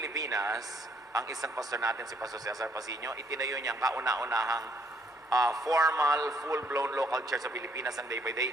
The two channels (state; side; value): normal; both; correlation 0.68